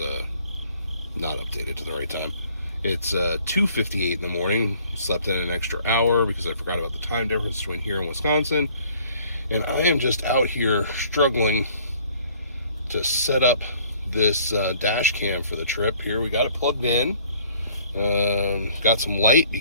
not updated to the right time. It's 2:58 in the morning. Slept in an extra hour because I forgot about the time difference between here and Wisconsin. And I am just out here struggling to set up this dash cam for the trip. Here we got it plugged in. Got some light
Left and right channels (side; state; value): both; inverted; correlation -0.57